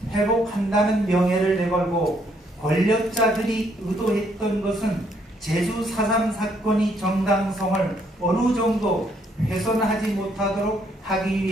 회복한다는 명예를 내걸고 권력자들이 의도했던 것은 제주 4.3 사건이 정당성을 어느 정도 훼손하지 못하도록 하기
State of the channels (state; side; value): normal; both; correlation 0.70